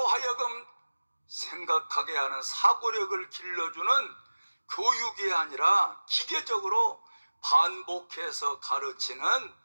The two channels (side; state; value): both; inverted; correlation -1.00